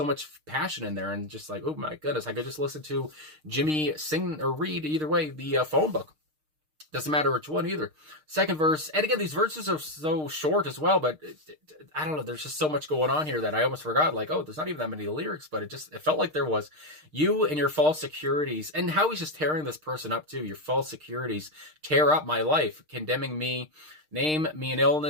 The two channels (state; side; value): late; left; 6.5 ms